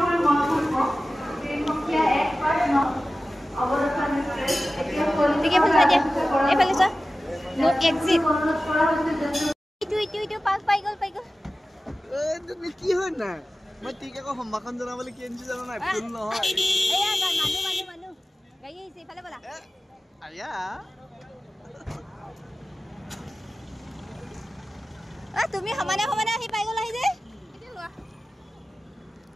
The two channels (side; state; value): both; normal; correlation 0.95